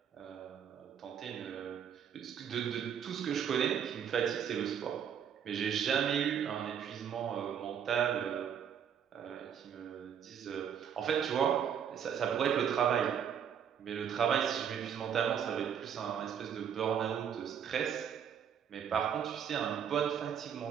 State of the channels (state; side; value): quieter; left; 8.3 dB